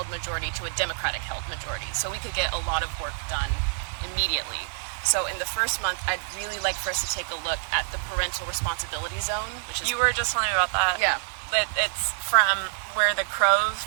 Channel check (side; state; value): left; silent; digital silence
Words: majority to a Democratic-held majority, so we could get a lot of work done immediately. So in the first month, I'd really like for us to take a look at the parental responsibility zone, which is... You were just telling me about that. Yeah. It's from where the crow